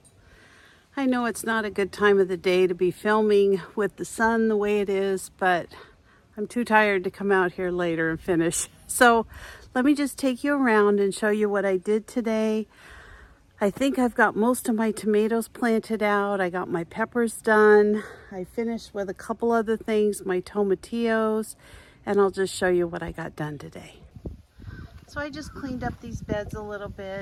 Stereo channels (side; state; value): both; identical; correlation 1.00